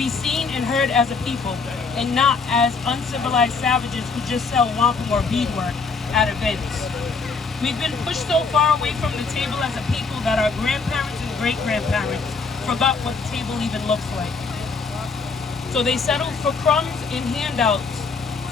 seen and heard as a people, and not as uncivilized savages who just sell wampum or beadwork at events. We've been pushed so far away from the table as a people that our grandparents and great-grandparents forgot what the table even looks like. So they settled for crumbs and handouts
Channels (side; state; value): right; quieter; 4.6 dB